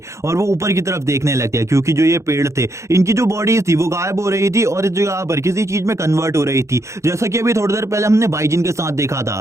और वो ऊपर की तरफ देखने लगते हैं क्योंकि जो ये पेड़ थे इनकी जो बॉडीज थी वो गायब हो रही थी और इस जगह पर किसी चीज में कन्वर्ट हो रही थी, जैसा कि अभी थोड़ी देर पहले हमने बाइजिन के साथ देखा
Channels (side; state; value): left; late; 0.14 ms